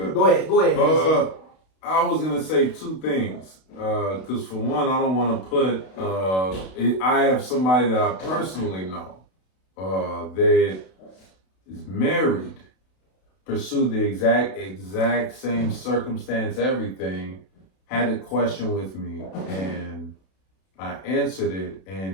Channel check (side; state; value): right; late; 32 ms